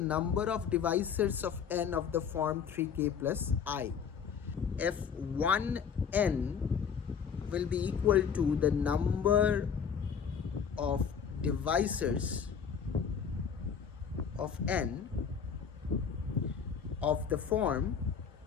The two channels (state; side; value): quieter; right; 7.0 dB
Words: of divisors of n of the form 3k plus I. F1n will be equal to the number of divisors of n of the form